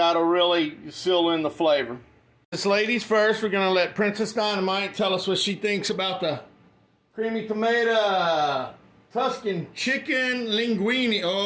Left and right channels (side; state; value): both; identical; correlation 1.00